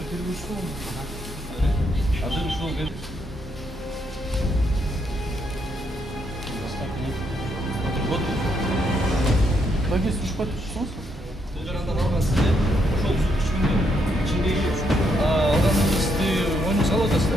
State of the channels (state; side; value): normal; both; correlation 0.76